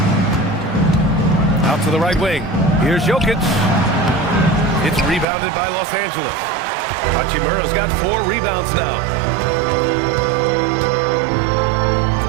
Out to the right wing. Here's Jokic. It's rebounded by Los Angeles. Hachimura's got 4 rebounds now.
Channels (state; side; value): drops out; left; at 5.2 s